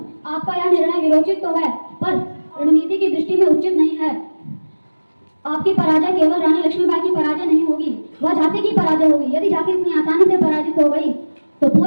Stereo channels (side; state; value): both; inverted; correlation -1.00